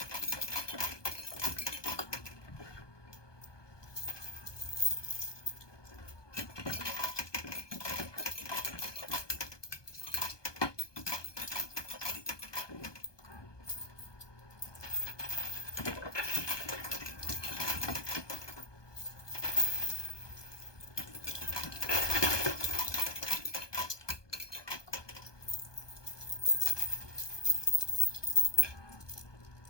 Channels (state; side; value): late; right; 1.2 ms